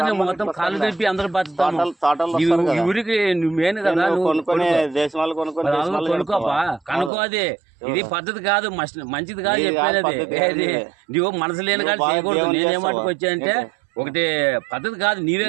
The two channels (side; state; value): left; drops out; at 7.1 s